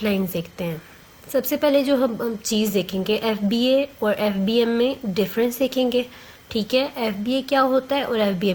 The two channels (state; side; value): identical; both; correlation 1.00